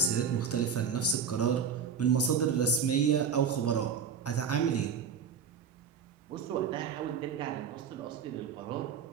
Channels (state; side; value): quieter; left; 6.5 dB